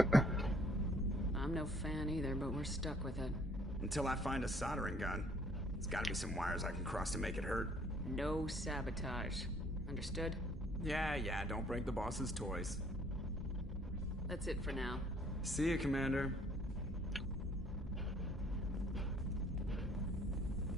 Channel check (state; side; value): normal; both; correlation 0.61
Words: I'm no fan either, but we're stuck with it. Until I find a soldering gun. There's gotta be some wires I can cross to make it hurt. No sabotage. Understood? Yeah, don't break the boss's toys. That's it for now. See you, Commander.